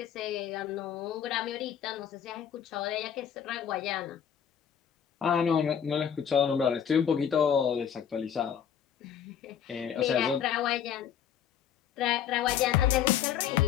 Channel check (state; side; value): quieter; right; 8.7 dB